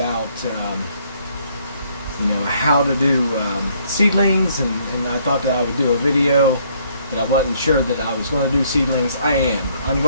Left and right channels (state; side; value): inverted; both; correlation -0.66